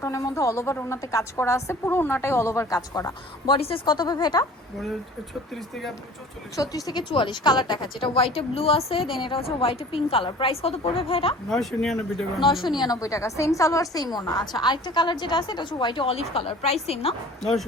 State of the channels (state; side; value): normal; both; correlation 0.45